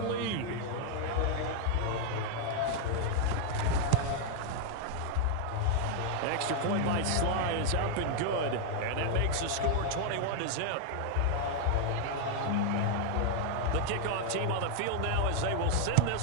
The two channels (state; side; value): different; both; correlation 0.00